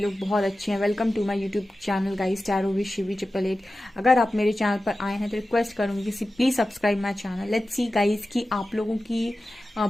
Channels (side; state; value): both; normal; correlation 0.94